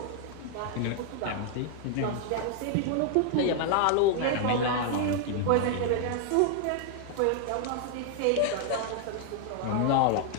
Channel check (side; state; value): both; different; correlation 0.00